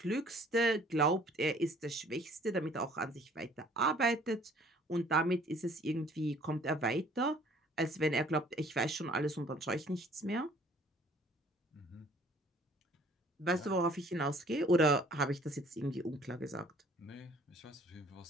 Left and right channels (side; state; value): both; normal; correlation 0.55